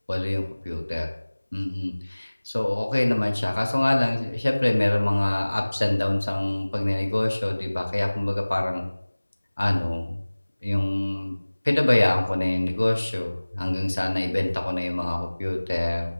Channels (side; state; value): both; inverted; correlation -1.00